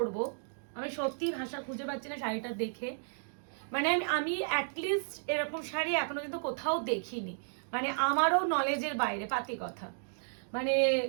আমি সত্যি ভাষা খুঁজে পাচ্ছি না শাড়িটা দেখে। মানে আমি অ্যাটলিস্ট এরকম শাড়ি এখনো কিন্তু কোথাও দেখিনি, মানে আমারও নলেজের বাইরে পাতি কথা। মানে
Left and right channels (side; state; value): left; silent; digital silence